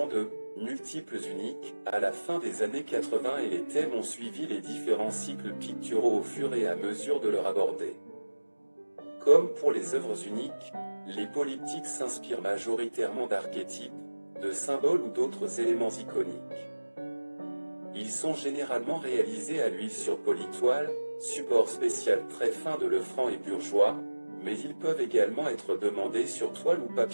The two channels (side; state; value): both; inverted; correlation -1.00